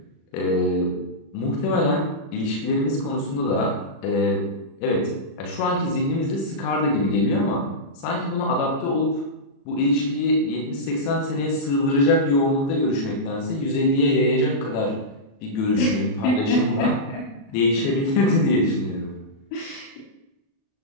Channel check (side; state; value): right; late; 36 ms